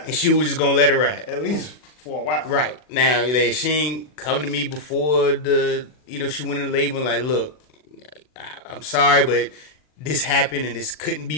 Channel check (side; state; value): right; late; 40 ms